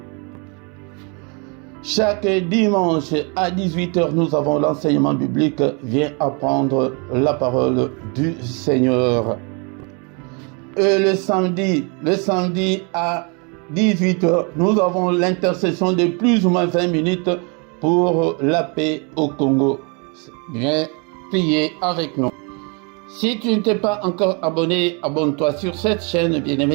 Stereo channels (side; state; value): left; quieter; 33.7 dB